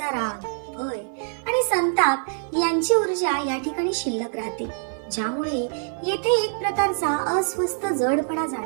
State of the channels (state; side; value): silent; left; 55 dB below the other